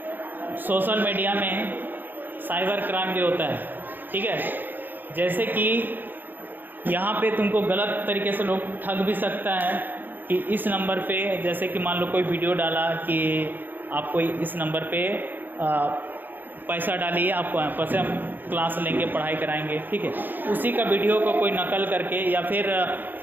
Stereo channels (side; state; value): left; late; 0.090 ms